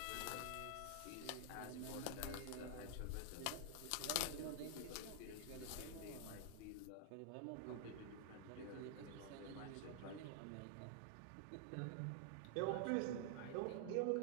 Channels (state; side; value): different; both; correlation -0.01